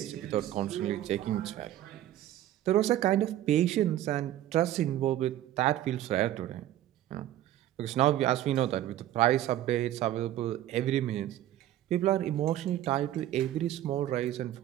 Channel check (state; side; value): quieter; left; 13.0 dB